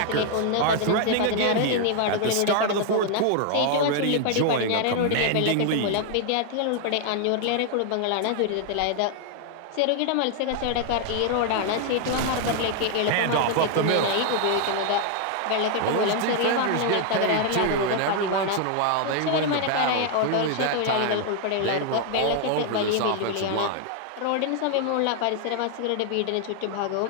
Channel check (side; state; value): both; different; correlation 0.00